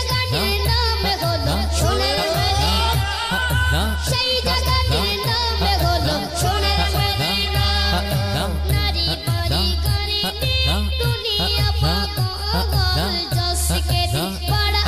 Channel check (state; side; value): noise; left; hum, 26 dB below the sound